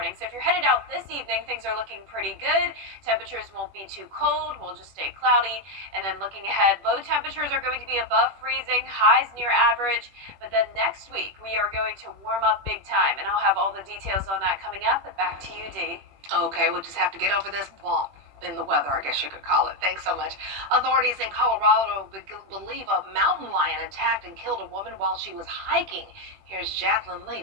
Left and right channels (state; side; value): late; left; 21 ms